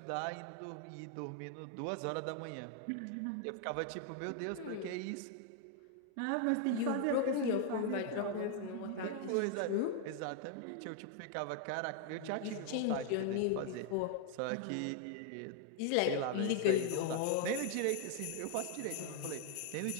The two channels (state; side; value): different; both; correlation 0.00